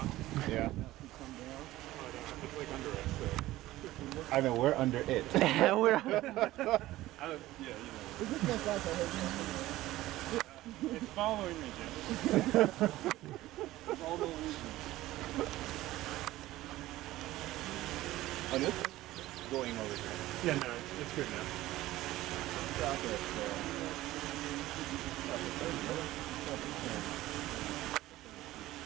Yeah. It's like under us, so. I know we're under it. We're It's following me, Jim. On this? Going over here. Yeah, no, it's good now.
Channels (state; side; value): quieter; left; 16.4 dB